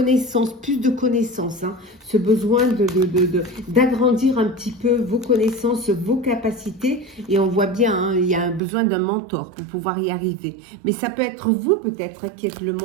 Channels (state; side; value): drops out; left; at 8.6 s